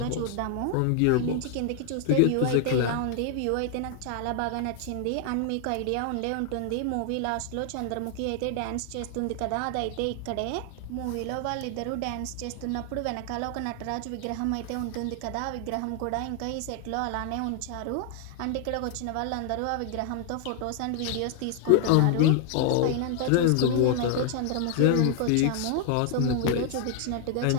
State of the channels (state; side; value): different; both; correlation 0.00